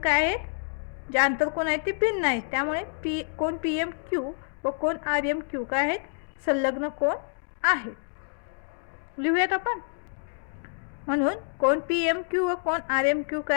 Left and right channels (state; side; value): silent; right; digital silence